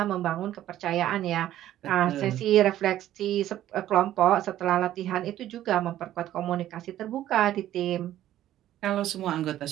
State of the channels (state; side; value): quieter; left; 12.8 dB